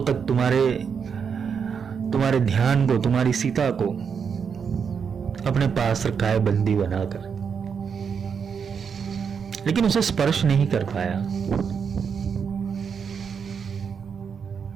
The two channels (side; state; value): left; quieter; 6.6 dB